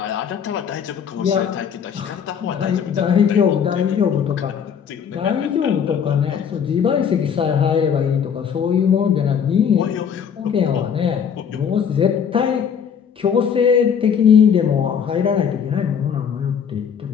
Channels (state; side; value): quieter; right; 7.5 dB